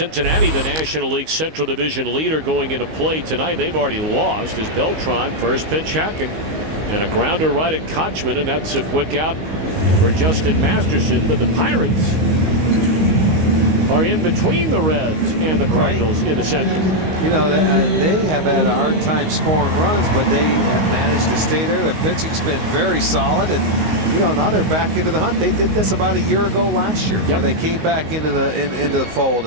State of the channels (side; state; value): left; late; 19 ms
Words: the National League Central Division leader, going into play tonight. They've already lost as Beltran first pitch hacking and a grounder right at Kochman, and that's a quick out for Justin Masterson. But the Pirates are in between the Reds and the Cardinals in the Central. You know, they have had a hard time scoring runs, but they have managed to stay there. Their pitching's been very solid, and you know, now they're back into the hunt. They did this about a year ago last year, where they came back into the fold,